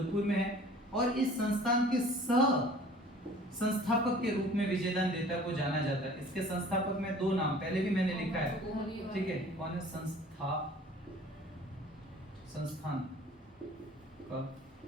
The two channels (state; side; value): normal; both; correlation 0.48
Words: में है। और इस संस्थान के संस्थापक के रूप में विजयदान देता को जाना जाता है। इसके संस्थापक में दो नाम पहले भी मैंने लिखा है, ठीक है। कौन है? संस्थान का